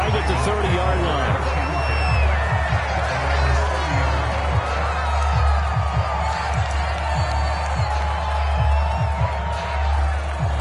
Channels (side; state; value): both; identical; correlation 1.00